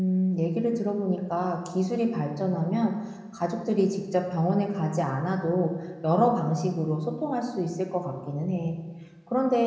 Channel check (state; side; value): identical; both; correlation 1.00